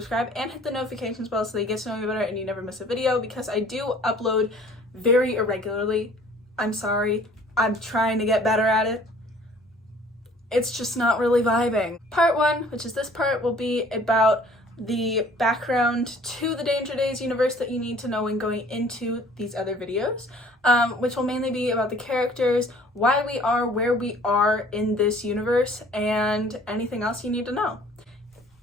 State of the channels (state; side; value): normal; both; correlation 0.53